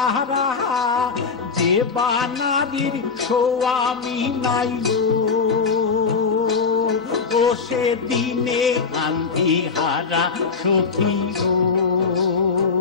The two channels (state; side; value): quieter; right; 5.1 dB